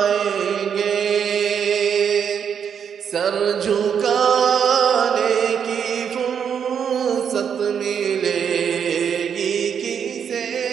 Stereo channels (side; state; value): left; quieter; 7.7 dB